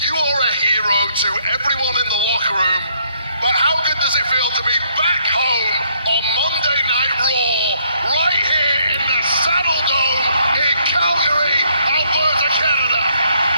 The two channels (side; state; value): both; inverted; correlation -0.69